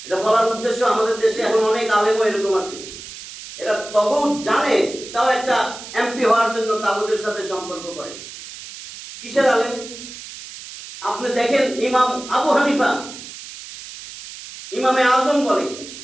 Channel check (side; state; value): right; noise; hiss, 13 dB below the sound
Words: এটা বলার উদ্দেশ্য, আমাদের দেশে এখন অনেক আলেমও এরকম আছে, এরা তাগুত জানে, তাও একটা এমপি হওয়ার জন্য তাগুতের সাথে সম্পর্ক করে। কিসের আলেম? আপনি দেখেন ইমাম আবু হানিফা, ইমামে আজম বলে,